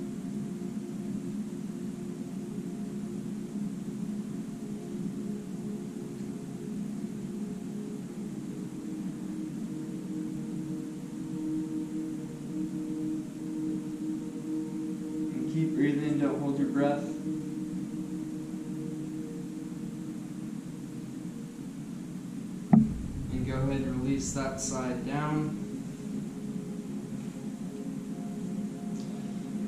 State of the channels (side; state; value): both; identical; correlation 1.00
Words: Keep breathing, don't hold your breath. And go ahead and release that side down.